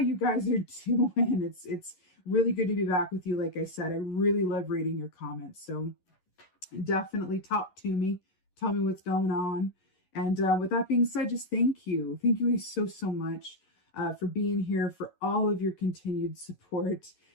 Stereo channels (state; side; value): late; right; 11 ms